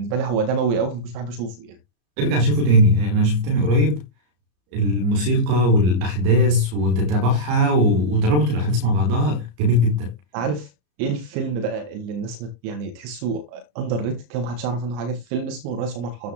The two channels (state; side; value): late; left; 34 ms